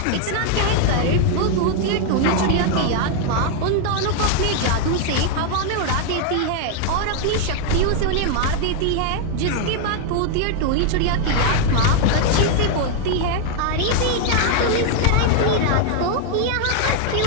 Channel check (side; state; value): both; different; correlation 0.00